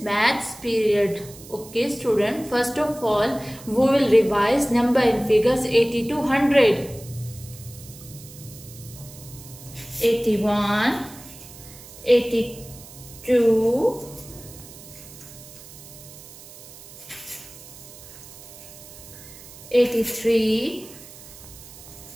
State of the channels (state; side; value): noise; right; hiss, 18 dB below the sound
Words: Maths period. Okay, student. First of all, we will revise number and figures 80 to 100. 81, 82, 83,